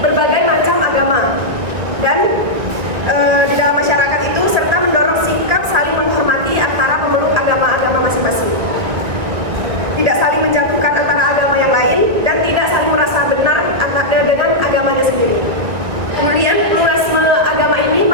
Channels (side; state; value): left; late; 1.7 ms